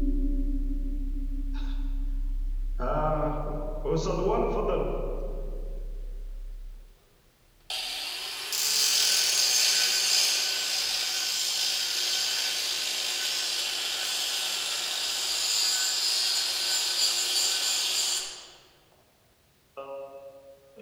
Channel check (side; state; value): both; identical; correlation 1.00